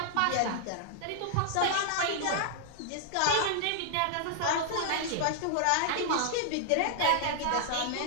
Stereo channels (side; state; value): both; different; correlation -0.01